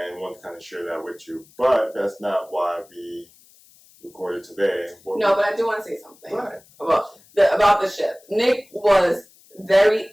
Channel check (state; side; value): noise; left; hiss, 28 dB below the sound